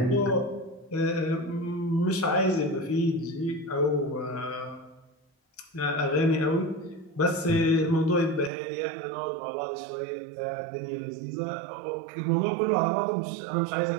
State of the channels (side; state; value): left; drops out; at 8.5 s